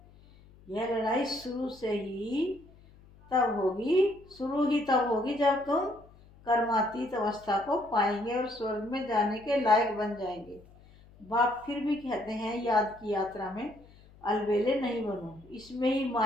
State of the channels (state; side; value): noise; left; hum, 25 dB below the sound